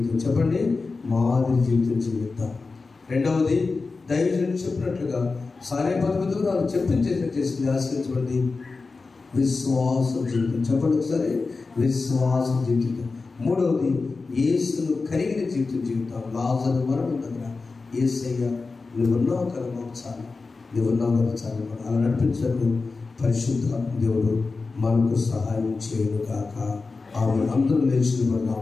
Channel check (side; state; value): right; quieter; 4.1 dB